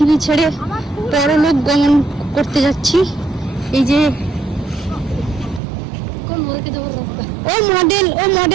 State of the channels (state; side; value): drops out; left; at 5.6 s